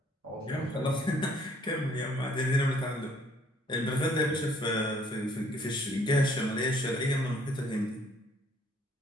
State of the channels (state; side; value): normal; both; correlation 0.62